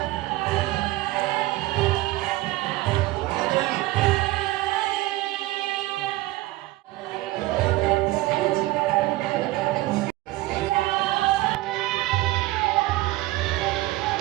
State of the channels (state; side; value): quieter; left; 18.4 dB